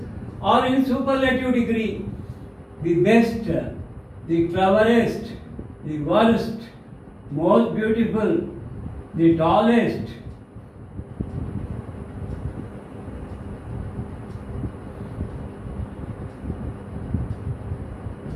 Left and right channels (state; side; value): identical; both; correlation 1.00